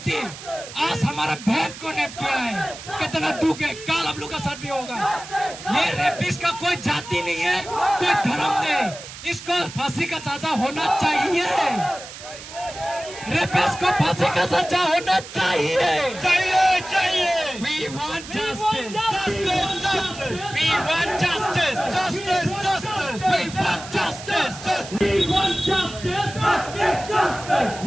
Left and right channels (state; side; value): noise; right; hiss, 13 dB below the sound